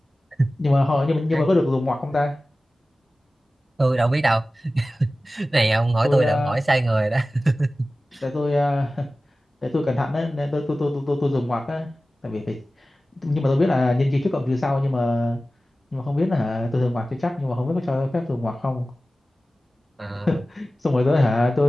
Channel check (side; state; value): both; normal; correlation 0.96